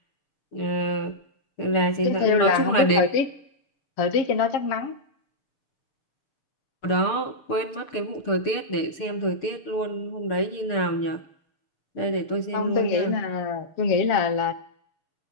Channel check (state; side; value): late; right; 6.7 ms